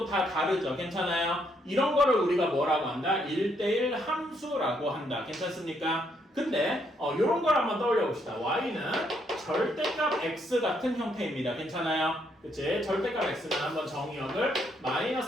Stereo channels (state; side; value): normal; both; correlation 0.73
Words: 다 다르죠. 괜찮아요? 이런 거를 우리가 뭐라고 한다? 1대1 함수라고 한다. 괜찮습니까? 근데 이런 걸 한번 떠올려 봅시다. y는 절대값 x 같은 형태입니다. 괜찮아요? 그치? 절대값 x는 한번 정의역을